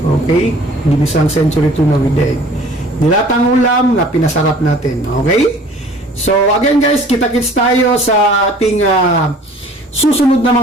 Ginisang century tuna with egg. Dilatang ulam na pinasarap natin. Okay? So, again, guys, kita-kits tayo sa ating susunod na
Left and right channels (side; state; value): both; normal; correlation 0.50